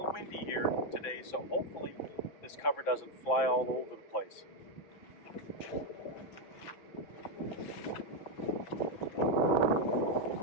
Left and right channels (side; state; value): right; late; 5.9 ms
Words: windy here today, so hopefully this cover doesn't fly all over the place.